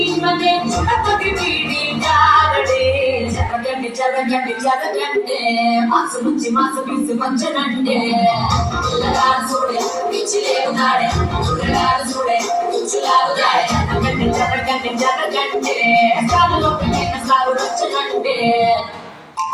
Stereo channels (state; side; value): identical; both; correlation 1.00